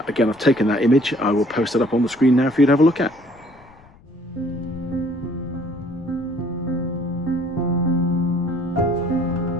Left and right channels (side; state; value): left; noise; rumble, 26 dB below the sound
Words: I've taken that image. I will post it up on the screen now for you to have a look at.